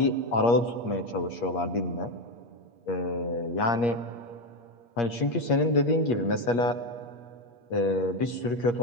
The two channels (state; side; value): late; right; 8.5 ms